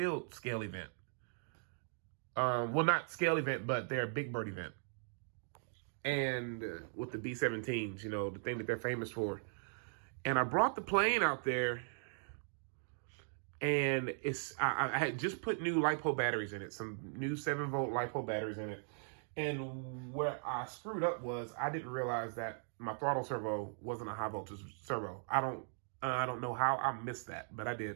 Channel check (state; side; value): silent; left; digital silence